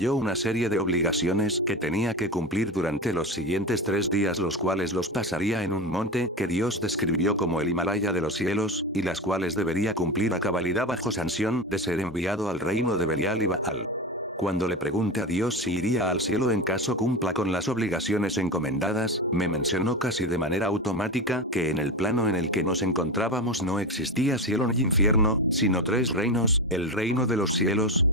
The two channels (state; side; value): normal; both; correlation 0.22